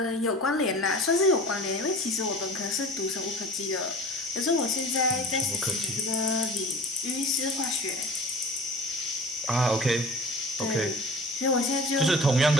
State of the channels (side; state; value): both; normal; correlation 0.40